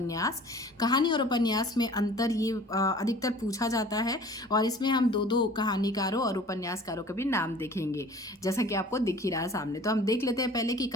कहानी और उपन्यास में अंतर ये अधिकतर पूछा जाता है और इसमें हम दो दो कहानीकारों और उपन्यासकारों के भी नाम देखेंगे, जैसा कि आपको दिख ही रहा है सामने। तो हम देख लेते हैं पहले कि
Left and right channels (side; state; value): both; normal; correlation 0.46